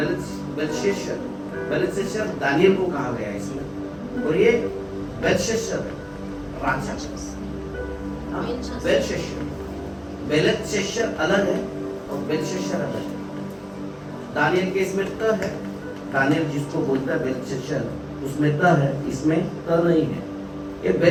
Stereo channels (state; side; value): identical; both; correlation 1.00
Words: बेलशस्सर दानियल को कहा गया है इसमें, और ये बेलशस्सर राजा, बेलशस्सर अलग है और बेलशस्सर अलग है। दानियल के इसमें त है, दानियल जिसको बोलता है बेलशस्सर, उसमें त है, इसमें त नहीं है। ये